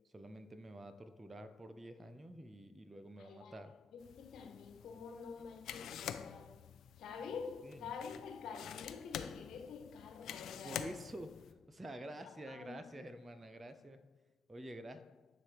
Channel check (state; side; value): quieter; right; 4.2 dB